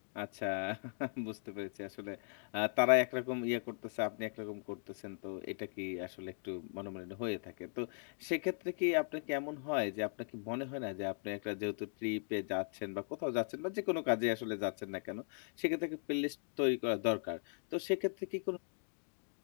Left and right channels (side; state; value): right; silent; digital silence